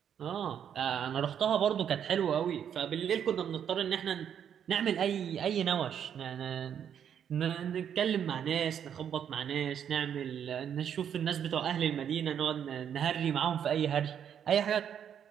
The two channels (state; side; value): quieter; left; 8.7 dB